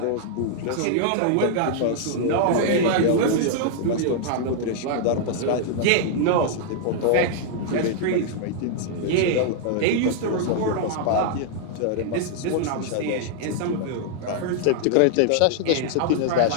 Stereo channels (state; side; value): different; both; correlation -0.01